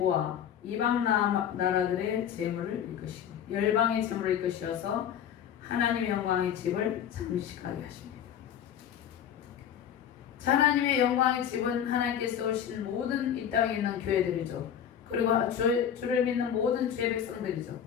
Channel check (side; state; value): right; quieter; 9.1 dB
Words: 이방 나라들의 재물을 이끄시고 열방의 재물을 이끄셔서 하나님의 영광의 집을 장식하게 하십니다. 자, 하나님의 영광의 집은 하나님께서 오신 모든 이 땅에 있는 교회들이죠. 그리고 주를 믿는 모든 주의 백성들이죠.